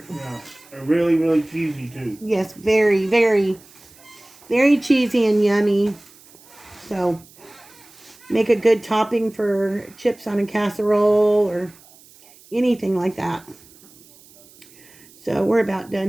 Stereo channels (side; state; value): right; noise; hiss, 25 dB below the sound